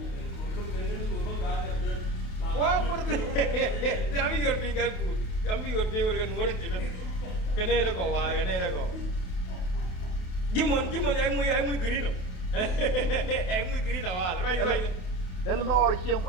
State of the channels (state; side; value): late; right; 28 ms